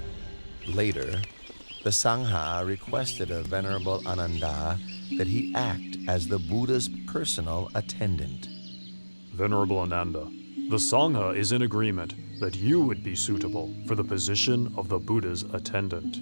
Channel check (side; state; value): both; inverted; correlation -1.00